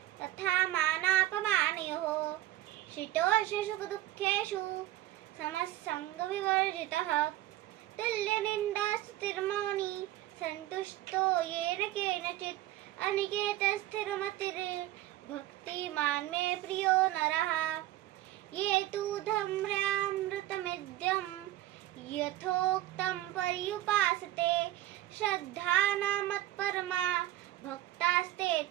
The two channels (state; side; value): quieter; left; 15.1 dB